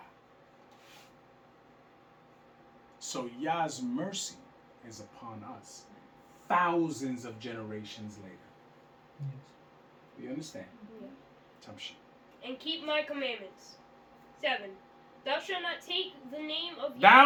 So Yah's mercy is upon us. Thousands of generations later. Yes. Do you understand? Yeah. Tamshi. And keep my commandments. 7. Thou shalt not take the name of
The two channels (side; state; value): both; identical; correlation 1.00